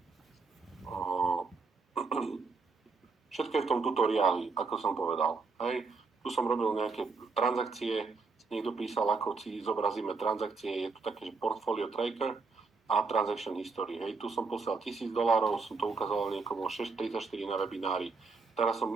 Všetko je v tom tutoriáli, ako som povedal, hej. Tu som robil nejaké transakcie, niekto písal, ako si zobrazíme transakcie, je tu také, že portfolio tracker a transaction history, hej. Tu som poslal $1000, som to ukázal niekomu 6.34 na webinári. Teraz som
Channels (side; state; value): left; quieter; 4.4 dB